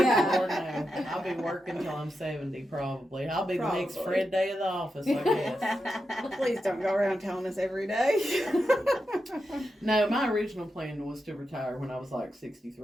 Lord, no. I'll be working till I'm 70 probably. I'll be the next Probably. Fred Day of the office, I guess. Please don't go around telling us every day. No, my original plan was to retire when I was like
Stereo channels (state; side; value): normal; both; correlation 0.88